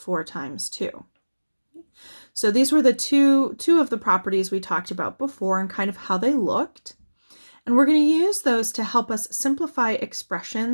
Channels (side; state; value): both; inverted; correlation -1.00